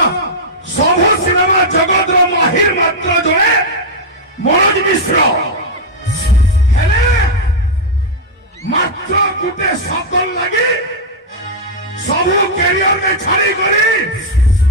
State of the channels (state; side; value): normal; both; correlation -0.02